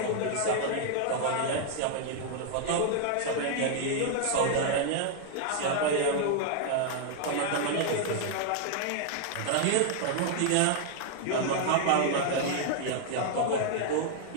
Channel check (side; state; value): both; different; correlation -0.01